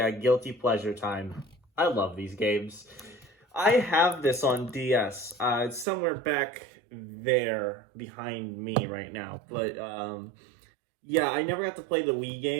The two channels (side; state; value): left; drops out; at 5.9 s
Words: guilty pleasure time. I love these games. I have this on DS. It's somewhere back there behind me right now. But yeah, I never got to play the Wii